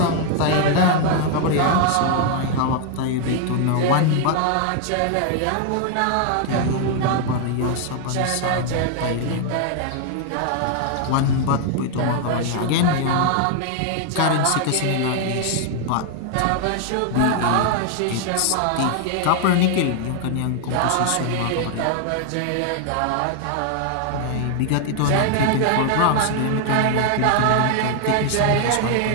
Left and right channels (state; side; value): different; both; correlation 0.00